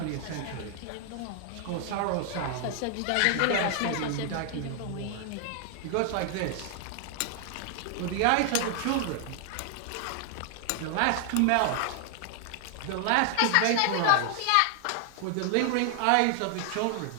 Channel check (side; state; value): both; different; correlation 0.00